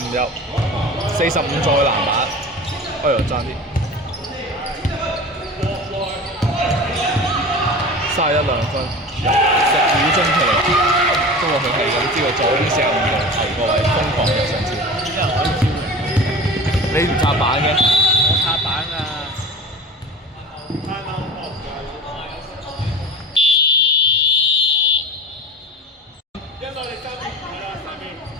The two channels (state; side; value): normal; both; correlation 0.35